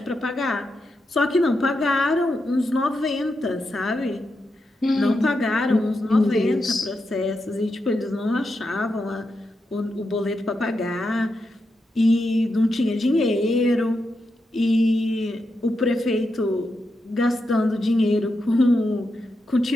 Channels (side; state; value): both; normal; correlation 0.86